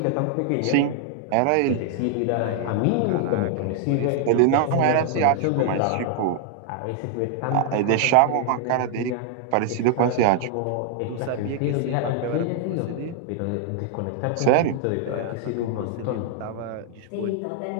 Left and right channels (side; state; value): both; different; correlation 0.00